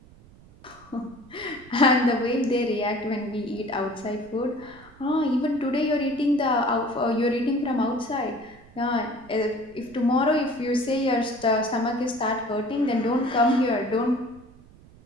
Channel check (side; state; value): right; noise; rumble, 24 dB below the sound